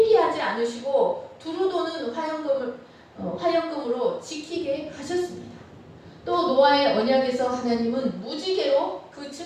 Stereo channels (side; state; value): both; identical; correlation 1.00